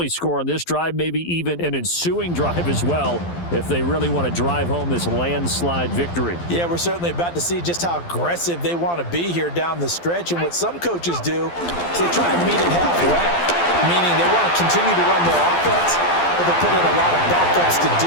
score on this drive, maybe even an ensuing drive as well, if they really want to drive home this landslide victory. Yeah, we're certainly about to see just how aggressive they want to be here down the stretch. And what some coaches do is they try and meet it halfway, meaning they want to continue to run their offense, but they put in a lot of backups to do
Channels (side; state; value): right; late; 12 ms